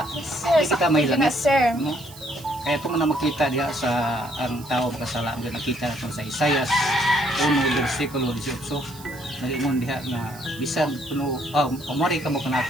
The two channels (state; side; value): noise; right; hiss, 19 dB below the sound